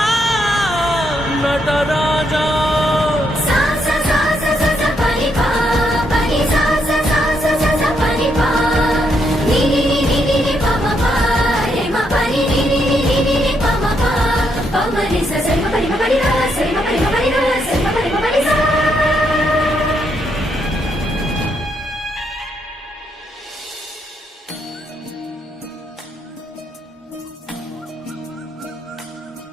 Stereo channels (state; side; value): normal; both; correlation 0.77